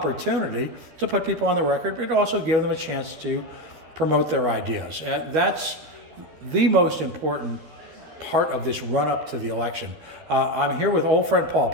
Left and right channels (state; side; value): late; left; 13 ms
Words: to put people on the record, but also give them a chance to promote their ideas. That's the most important part of this run-up to the election. I'm here with old friend Paul